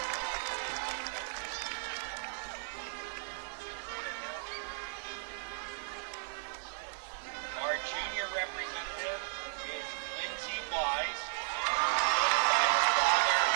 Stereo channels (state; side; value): silent; left; digital silence